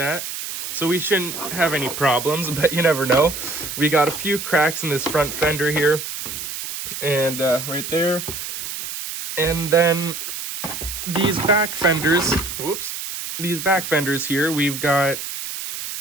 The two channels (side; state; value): right; noise; hiss, 7 dB below the sound